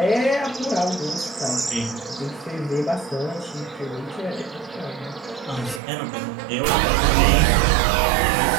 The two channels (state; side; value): drops out; left; at 5.8 s